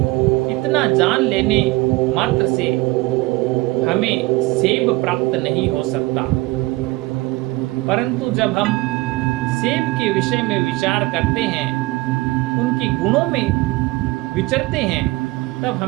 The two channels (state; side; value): quieter; left; 21.3 dB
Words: इतना जान लेने मात्र से हमें सेब प्राप्त नहीं हो सकता। परंतु जब हम सेब के विषय में विचार करते हैं, उनके गुणों में विचरते हैं, तब